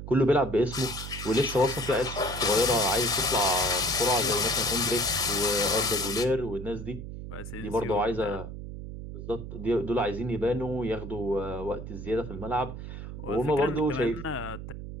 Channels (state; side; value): noise; right; hum, 9 dB below the sound